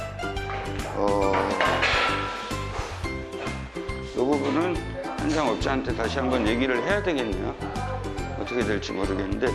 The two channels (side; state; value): both; identical; correlation 1.00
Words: 이 부분은 현장업자한테 다시 한번 얘기를 해야 되겠네요. 어떻게 될지 모르겠는데